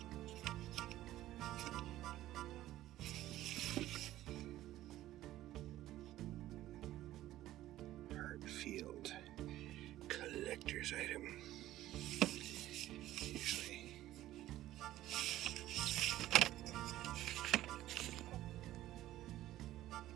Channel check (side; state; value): left; quieter; 14.5 dB